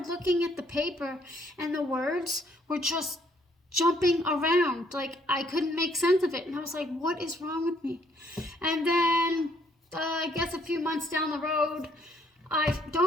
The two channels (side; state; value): both; normal; correlation 0.67